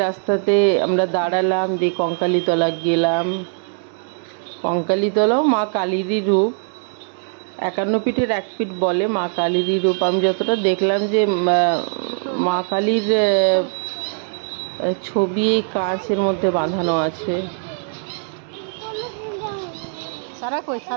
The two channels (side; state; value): left; silent; 65 dB below the other